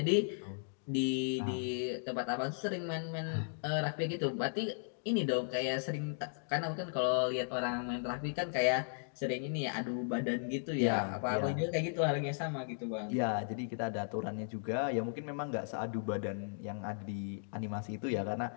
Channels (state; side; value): silent; right; digital silence